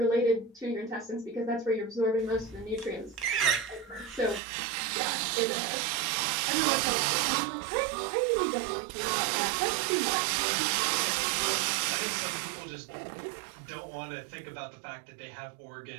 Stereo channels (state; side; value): drops out; left; at 4.4 s